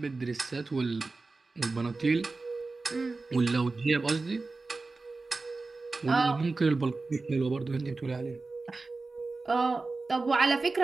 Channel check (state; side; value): quieter; left; 3.7 dB